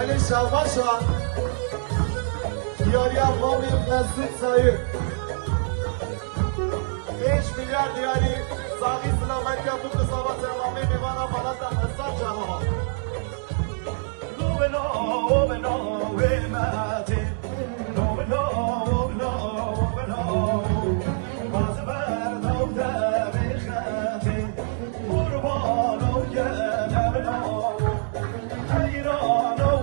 شباشا دیاری افامی مسجد سایه 5 میلیارد دیاری ساقی سلامت که بود قضاوت امامی میوانم بلد اصلا جنها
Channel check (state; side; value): silent; left; digital silence